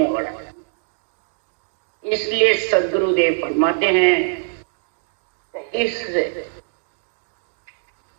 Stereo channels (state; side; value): silent; left; digital silence